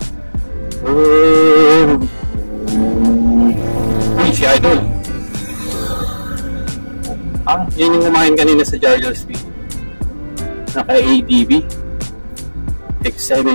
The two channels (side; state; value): both; inverted; correlation -1.00